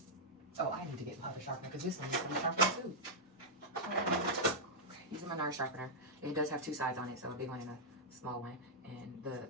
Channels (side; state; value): both; normal; correlation -0.08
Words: Oh, I need to get my other sharpener because this one needs to be sharpened too. Okay, using my NARS sharpener. It does have two sides on it, so a big one and a small one. And the